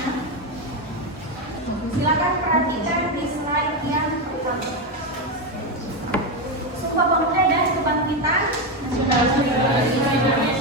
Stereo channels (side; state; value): both; normal; correlation 0.10